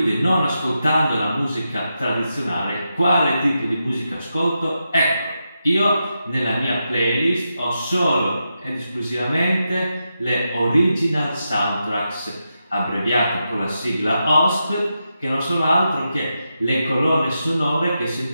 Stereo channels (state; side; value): inverted; both; correlation -0.87